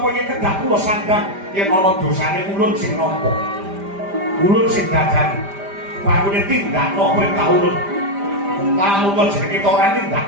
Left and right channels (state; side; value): late; left; 5.0 ms